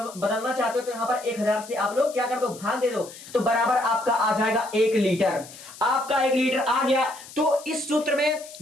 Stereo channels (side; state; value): left; noise; hiss, 17 dB below the sound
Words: बदलना चाहते हो तो यहां पर 1000 से आप लोग क्या कर दो? भाग दे दो, तो बराबर आपका आ जाएगा 1 लीटर। आपका 1 लीटर आ गया। तो इस सूत्र में